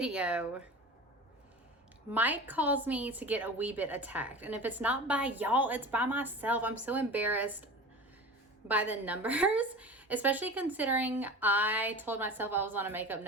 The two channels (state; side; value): normal; both; correlation 0.33